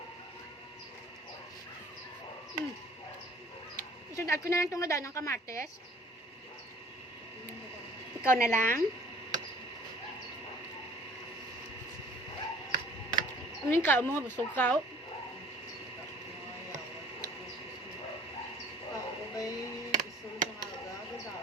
Isunod ko na lang itong nadaan ng kamates. Ikaw na lang. Ano yung kao mo? Busog kao?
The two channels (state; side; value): normal; both; correlation 0.51